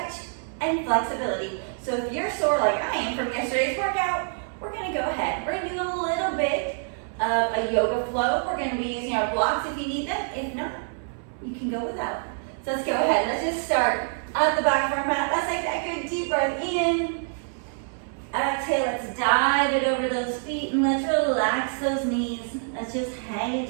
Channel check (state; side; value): silent; left; 61 dB below the other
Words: and flexibility. So if you're sore like I am from yesterday's workout, we're going to go ahead. We're going to do a little bit of a yoga flow. We're going to be using our blocks if you need them. If not, you can go without. So let's go ahead. Let's just start at the back of our mat. Let's take that good deep breath in. Exhale, let's dive it over those feet and let's relax those knees. Let's just hang